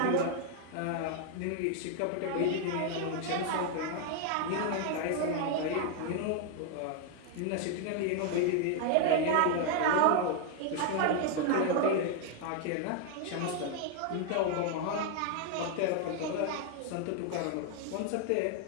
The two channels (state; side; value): different; both; correlation 0.00